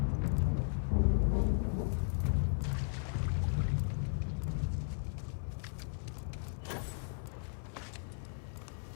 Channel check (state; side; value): silent; right; 54 dB below the other